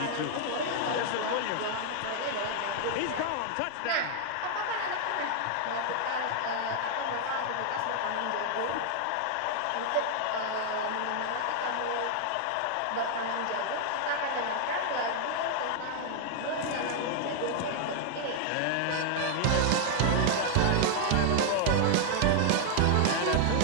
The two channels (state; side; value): different; both; correlation 0.00